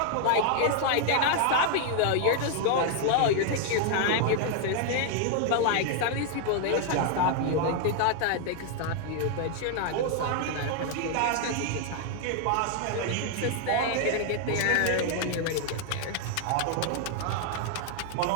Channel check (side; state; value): both; different; correlation 0.00